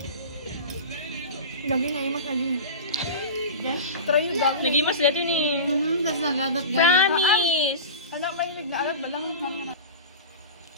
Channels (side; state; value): both; inverted; correlation -0.30